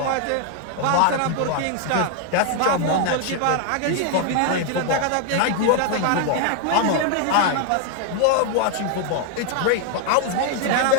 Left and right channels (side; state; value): both; different; correlation 0.00